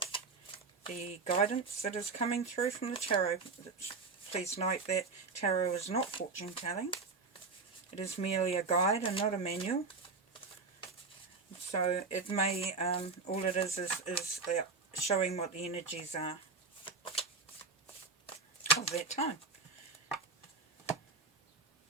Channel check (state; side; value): quieter; left; 4.3 dB